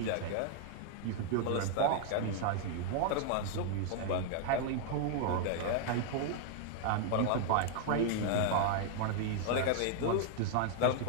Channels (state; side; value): different; both; correlation 0.00